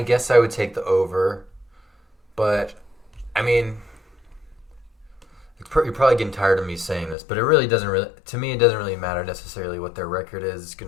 guess I would take the over, but I mean, you're probably getting tired of me saying this, but it really doesn't really. To me, it doesn't really matter necessarily what their record is. It's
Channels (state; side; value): drops out; right; at 7.2 s